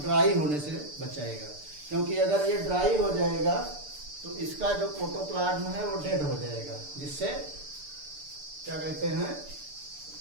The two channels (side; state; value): left; late; 6.8 ms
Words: होने से बचाएगा। क्योंकि अगर ये ड्राई हो जाएगा तो इसका जो प्रोटोप्लाज्म है वो डेड हो जाएगा, जिससे क्या कहते हैं,